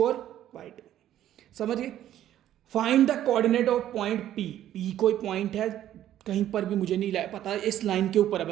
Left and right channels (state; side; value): quieter; left; 12.0 dB